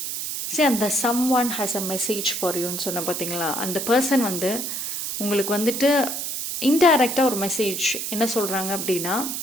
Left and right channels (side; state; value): right; noise; hiss, 4 dB below the sound